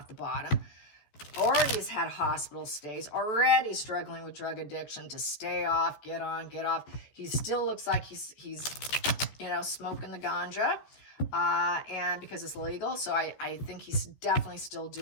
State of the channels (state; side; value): late; right; 14 ms